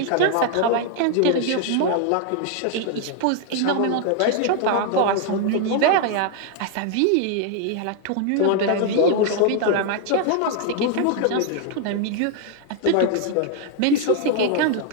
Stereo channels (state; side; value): different; both; correlation 0.00